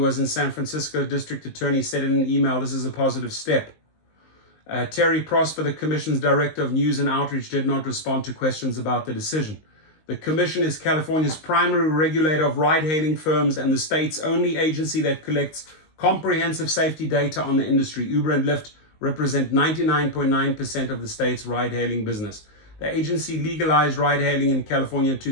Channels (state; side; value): late; right; 19 ms